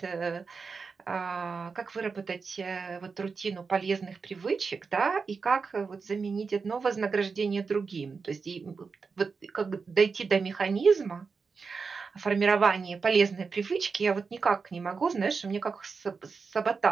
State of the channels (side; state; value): left; quieter; 5.0 dB